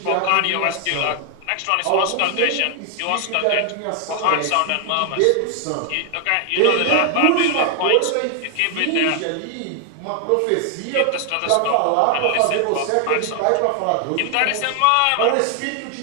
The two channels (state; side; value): different; both; correlation 0.00